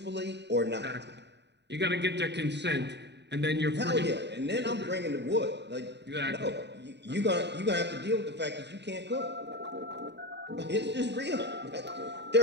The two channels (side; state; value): left; late; 0.50 ms